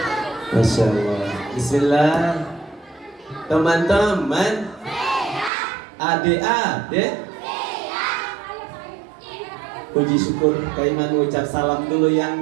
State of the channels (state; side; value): drops out; left; at 5.5 s